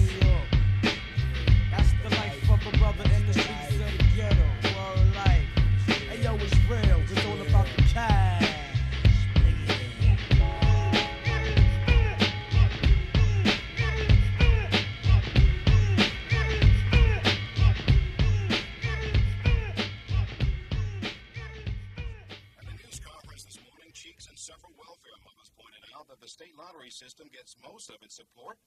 York. That's the life of a brother in the streets of the ghetto. World life. Hey, yo, it's real. It's all about the cash. At a news conference this morning, Cheeks and several welfare mothers pointed out that the state lottery system gets most of its support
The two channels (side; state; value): both; identical; correlation 1.00